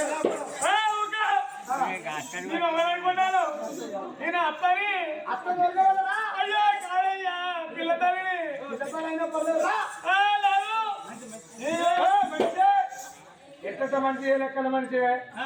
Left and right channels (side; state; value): both; identical; correlation 1.00